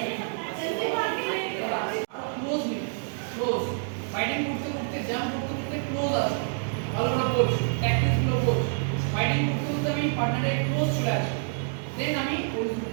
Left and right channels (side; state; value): left; silent; digital silence